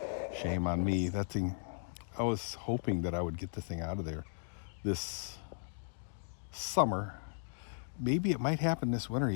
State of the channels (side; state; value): right; silent; digital silence